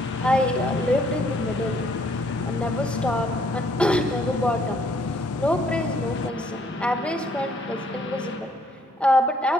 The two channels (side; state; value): both; normal; correlation 0.66